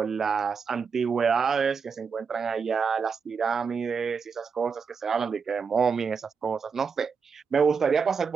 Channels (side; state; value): left; quieter; 5.8 dB